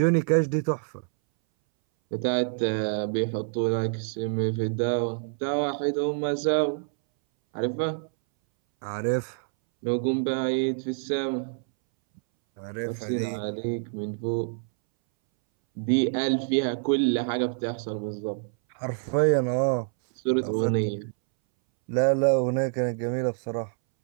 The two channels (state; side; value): silent; left; 60 dB below the other